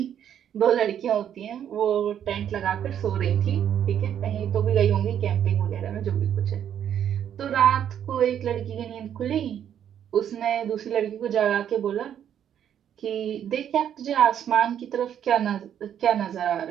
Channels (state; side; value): quieter; left; 9.5 dB